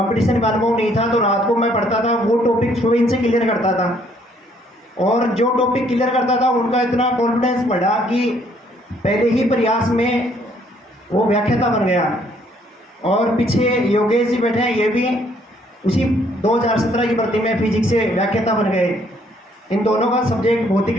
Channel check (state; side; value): normal; both; correlation 0.65